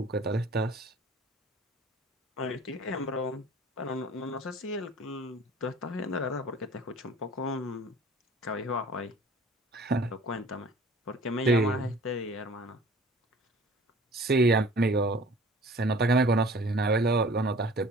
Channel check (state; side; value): normal; both; correlation 0.48